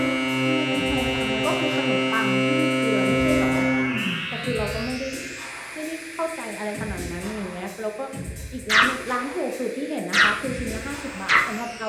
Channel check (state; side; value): identical; both; correlation 1.00